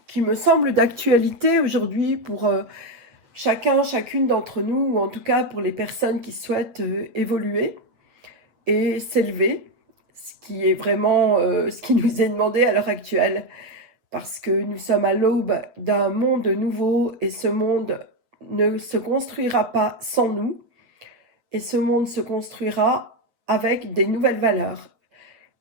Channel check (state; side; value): late; left; 8.5 ms